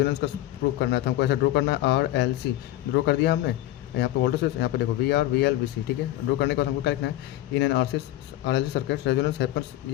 का प्रूव करना था हमको, ऐसा ड्रॉ करना है। RLC ड्रॉ कर दिया हमने, यहाँ पे वोल्टेज, यहाँ पे देखो VR VL VC, ठीक है। ड्रॉ करने के बाद हमको क्या लिखना है, in an RLC circuit resonance happens,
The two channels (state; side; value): quieter; right; 14.6 dB